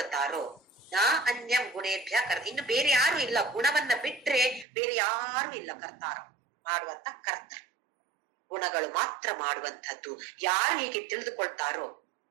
ನಾ ಅನ್ಯಂ ಗುಣೇಭ್ಯ ಕರ್ತ, ಇನ್ನು ಬೇರೆ ಯಾರು ಇಲ್ಲ. ಗುಣವನ್ನ ಬಿಟ್ರೆ ಬೇರೆ ಯಾರು ಇಲ್ಲ ಕರ್ತಾರ, ಮಾಡುವಂತ ಕರ್ತ. ಗುಣಗಳು ಮಾತ್ರ ಮಾಡುವಂತದ್ದು. ಯಾರು ಹೀಗೆ ತಿಳಿದುಕೊಳ್ತಾರೋ,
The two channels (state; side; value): drops out; left; at 4.7 s